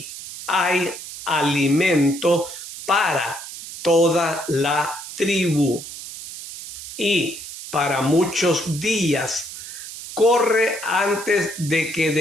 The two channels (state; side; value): noise; right; hiss, 11 dB below the sound